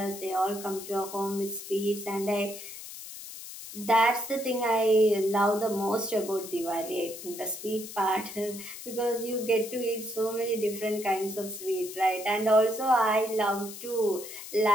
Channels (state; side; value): noise; left; hiss, 12 dB below the sound